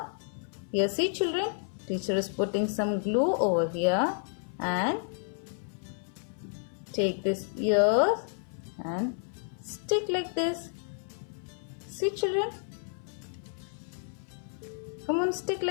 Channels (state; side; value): silent; right; 57 dB below the other